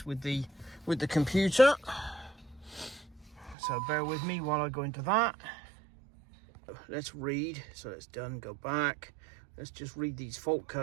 with the computer. So bear with me while I go into that. Let's read. So it's done. Go back. Let's just read these fault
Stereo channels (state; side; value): drops out; left; at 3.6 s